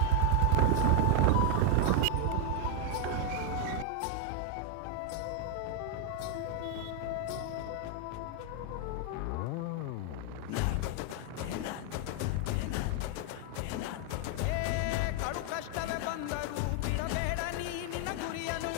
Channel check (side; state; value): both; different; correlation 0.01